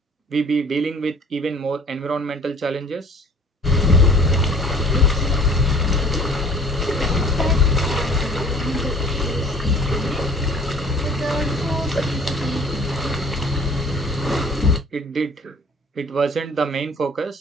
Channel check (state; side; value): normal; both; correlation 0.51